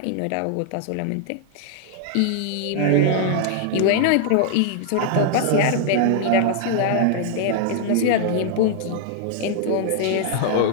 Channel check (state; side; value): different; both; correlation -0.01